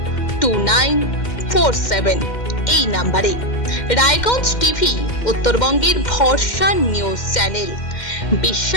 এই নাম্বারে। রায়গঞ্জ টিভি উত্তরবঙ্গের ভরসা নিউজ চ্যানেল,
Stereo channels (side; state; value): right; late; 2.1 ms